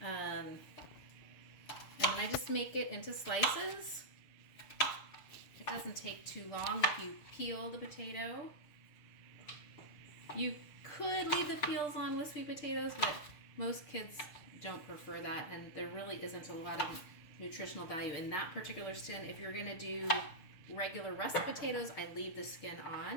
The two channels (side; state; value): right; late; 6.7 ms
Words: and then I just make it into slices. It doesn't take too long if you peel the potato. You could leave the peels on with sweet potatoes, but most kids don't prefer that, and there really isn't a lot of nutritional value in that particular skin. If you're going to do regular russet potatoes, I leave the skin